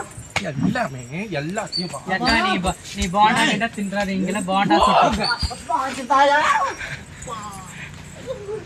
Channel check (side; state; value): both; identical; correlation 1.00